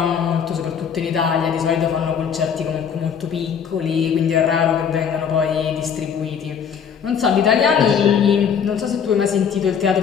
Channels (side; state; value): right; quieter; 7.3 dB